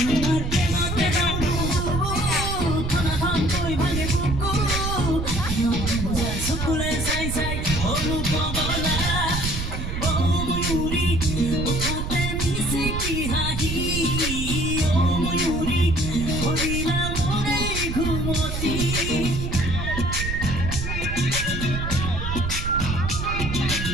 প্রেমতে ডুবো থানা থাম কই ভাঙে বুকু সকলে চাই চাই অনুপগলা ও ময়ূরী উঠাতে মিছে কি হাহি ও ময়ূরী হরিণা মোরে ঘুমতি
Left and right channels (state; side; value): noise; right; rumble, 3 dB below the sound